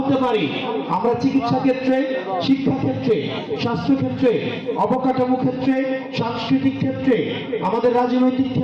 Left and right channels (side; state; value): both; identical; correlation 1.00